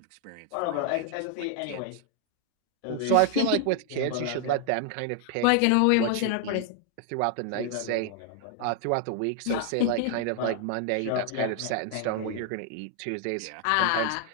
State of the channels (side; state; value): both; different; correlation 0.00